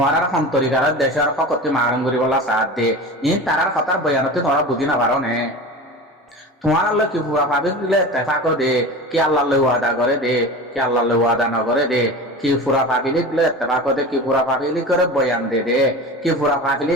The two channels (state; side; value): normal; both; correlation 0.32